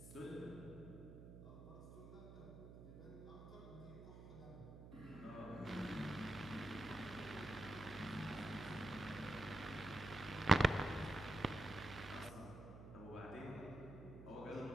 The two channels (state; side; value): noise; right; hum, 13 dB below the sound